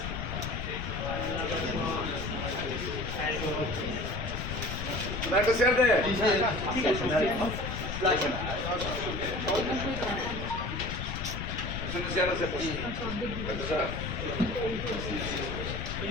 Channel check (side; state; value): left; noise; rumble, 5 dB below the sound